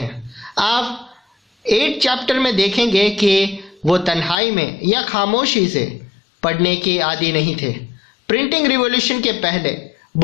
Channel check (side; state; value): right; drops out; at 4.4 s